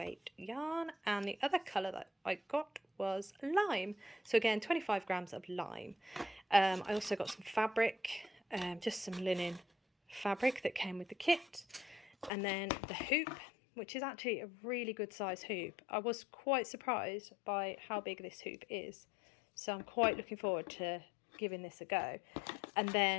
yarn, and the other colour that I got was lime. So again, 25 grams of lime. I also got some fabric, just some linen fabric that came with the kit, and then the hoop, which is actually a really good size hoop. I was quite surprised by how big this hoop is, so I'm quite looking forward to giving this a go. And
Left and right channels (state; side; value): drops out; right; at 12.3 s